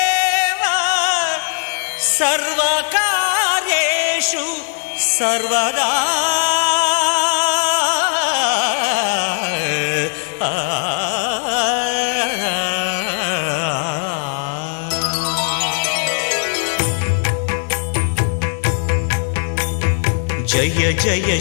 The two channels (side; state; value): right; silent; 67 dB below the other